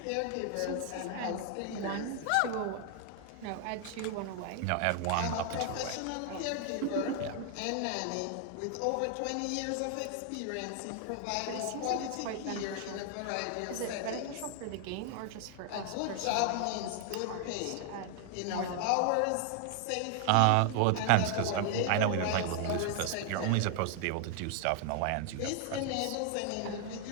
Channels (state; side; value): different; both; correlation 0.00